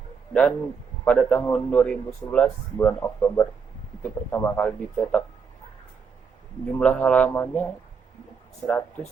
Dan pada tahun 2011 bulan Oktober itu pertama kali dicetak. Jumlah halamannya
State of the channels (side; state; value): left; quieter; 6.0 dB